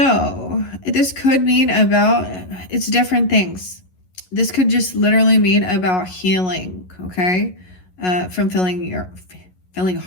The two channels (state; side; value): late; right; 11 ms